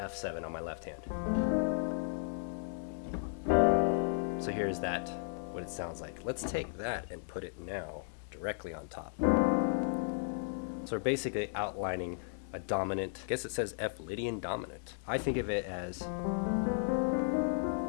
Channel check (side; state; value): right; silent; digital silence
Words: on my left hand. So here's that, what it sounds like. Let's take that and put it now directly on top. So we're basically outlining a dominant, I guess it says F Lydian dominant. I think of it as